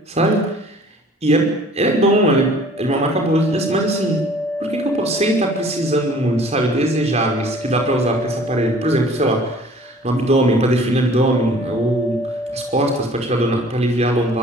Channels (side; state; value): both; normal; correlation 0.51